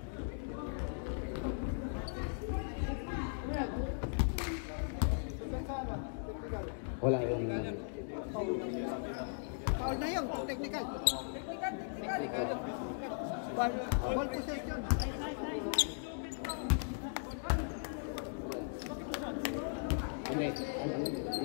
Wala yung... Foul na yun, technical. Ball possession. Hindi.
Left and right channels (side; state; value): right; silent; digital silence